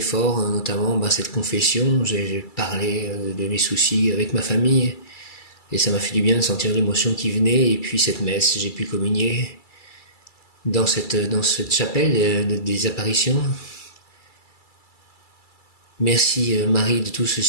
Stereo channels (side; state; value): right; late; 2.3 ms